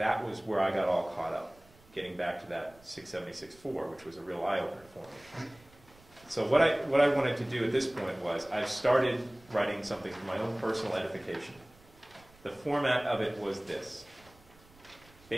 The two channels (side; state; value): right; noise; rumble, 27 dB below the sound